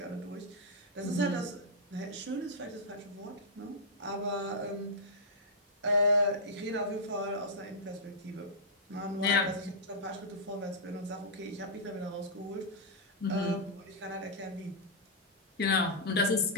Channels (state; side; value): normal; both; correlation -0.10